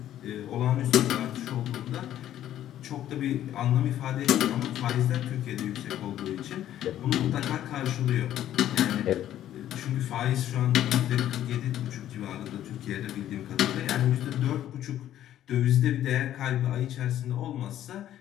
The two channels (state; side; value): quieter; right; 12.0 dB